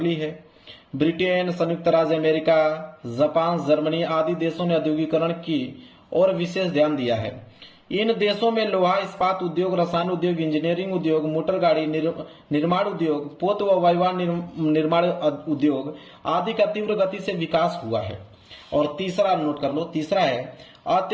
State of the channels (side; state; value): both; identical; correlation 1.00